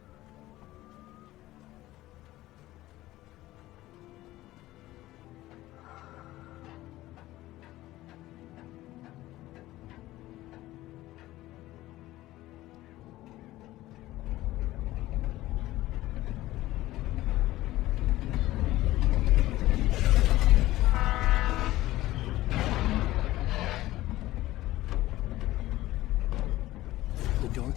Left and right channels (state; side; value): quieter; right; 16.5 dB